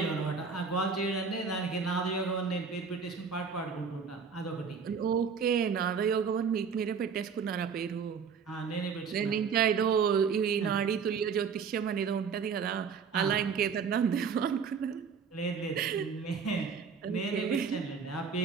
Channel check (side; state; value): left; quieter; 6.1 dB